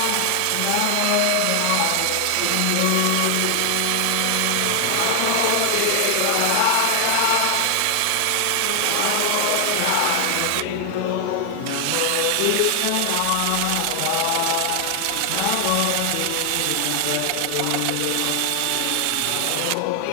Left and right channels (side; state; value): both; different; correlation 0.00